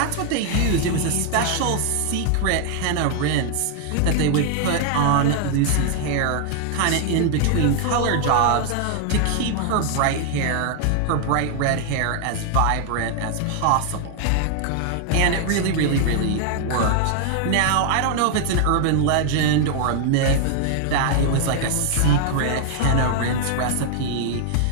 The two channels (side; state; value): both; different; correlation 0.00